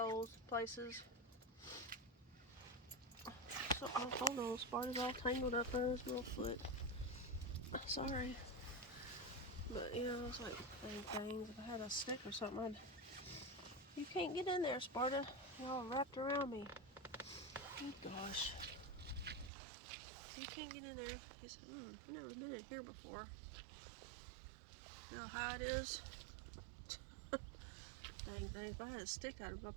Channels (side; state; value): left; drops out; at 19.5 s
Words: places. So hold on, Sparta's all tangled up in his little foot. Sorry. But you know, it's like things. If I had a stick or something, you can't get in there, Sparta. You're all wrapped around me. Oh gosh. You can't get in there. He said, I've never been in here before. You know how it is? Dang things. If I had a stick, I'd